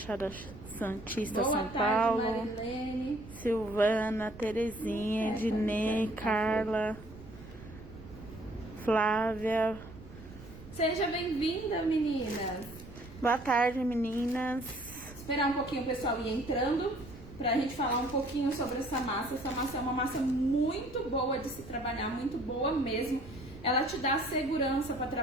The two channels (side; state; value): right; noise; rumble, 17 dB below the sound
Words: Santista, Boa São tarde, Paulo. Marilene. Silvana, Terezinha, Ednei, Carla, Flávia. Seja bem-vinda, meninas. Boa tarde, meninas. Esperar um pouquinho o pessoal ir entrando pra gente falar um pouquinho sobre essa massa. Essa massa é uma massa muito boa de se trabalhar, muito boa mesmo. Ela te dá segurança para